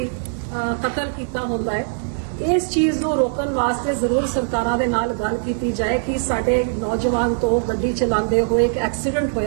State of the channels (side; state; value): left; silent; digital silence